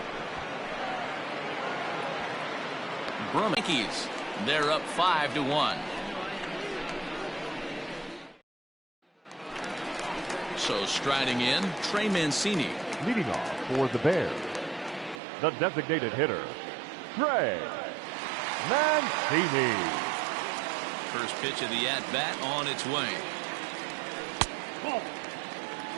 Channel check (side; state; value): left; drops out; at 15.2 s